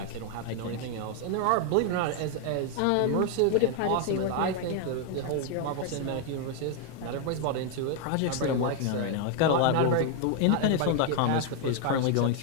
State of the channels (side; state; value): both; different; correlation 0.00